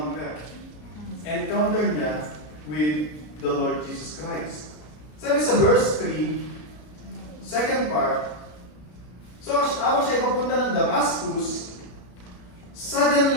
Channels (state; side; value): late; right; 33 ms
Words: Encounter niya with the Lord Jesus Christ. Sabi sa verse 3, second part, so, habang siya papunta ng Damascus,